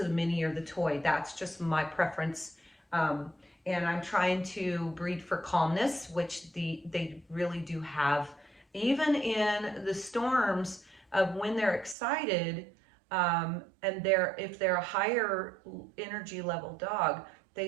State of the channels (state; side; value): drops out; left; at 12.0 s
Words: the mini or the toy. That's just my preference. And I'm trying to breed for calmness, which they really do have. Even in the storms of when they're excited, and if they're a higher energy level dog, they